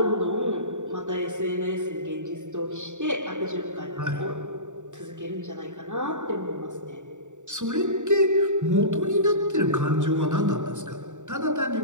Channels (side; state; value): left; late; 0.85 ms